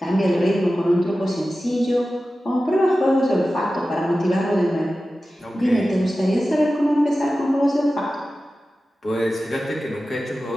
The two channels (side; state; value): both; normal; correlation 0.94